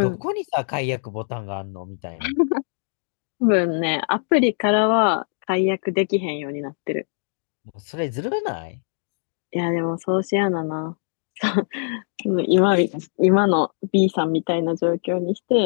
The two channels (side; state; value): right; silent; 64 dB below the other